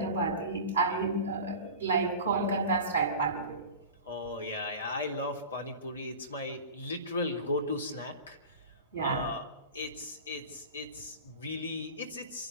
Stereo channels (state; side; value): inverted; both; correlation -0.34